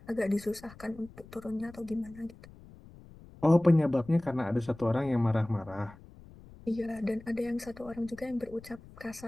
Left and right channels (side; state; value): left; noise; rumble, 20 dB below the sound